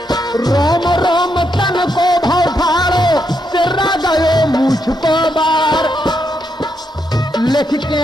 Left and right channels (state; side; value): normal; both; correlation 0.80